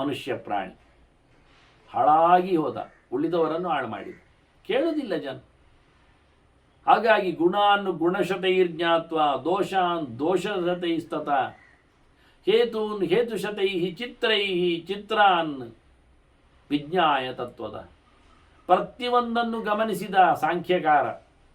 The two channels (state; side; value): identical; both; correlation 1.00